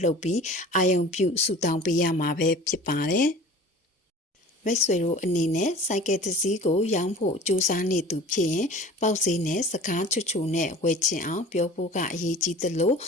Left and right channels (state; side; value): normal; both; correlation 0.42